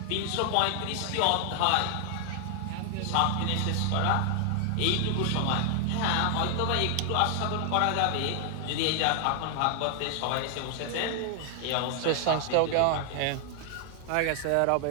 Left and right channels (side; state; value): both; different; correlation 0.00